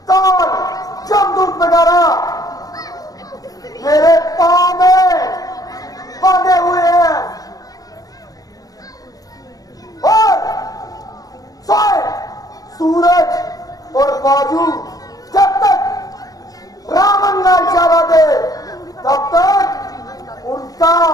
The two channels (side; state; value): right; late; 0.18 ms